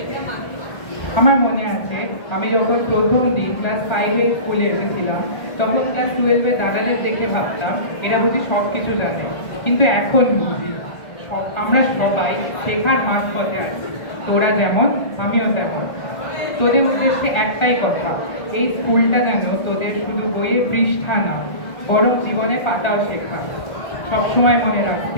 আমার মনে আছে আমি যখন প্রথম দিন ক্লাস 5-এ স্কুলে এসেছিলাম, তখন ক্লাস 12-এ দাদাদের দেখে ভাবতাম এরা বুঝি সব কিছু জানে, কিন্তু এখন বুঝি আমরা সবাই শেখার মাঝ পথে আছি। তোরা যেমন, আমিও তেমন। তোদের উদ্দেশ্যে একটাই কথা, এই স্কুলটা যেন তোদের শুধু বইয়ের পৃষ্ঠা না, বরং জীবনে পাতাও শেখা। সবসময় মনে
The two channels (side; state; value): right; late; 1.6 ms